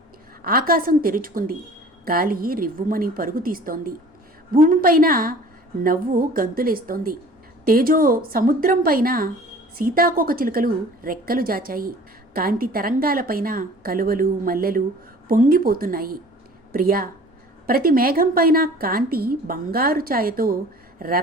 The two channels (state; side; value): normal; both; correlation 0.47